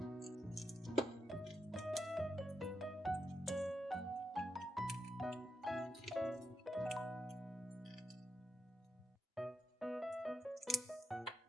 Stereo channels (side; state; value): both; normal; correlation 0.85